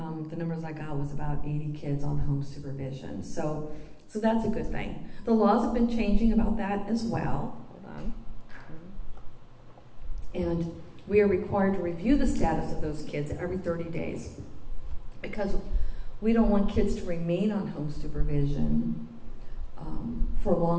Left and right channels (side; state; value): both; identical; correlation 1.00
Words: the numbers I got was about 80 kids on home supervision. So that's a good thing. The laws have been changing about that as well. Hold on. And we are required to review the status of those kids every 30 days because we don't want kids to remain on home supervision for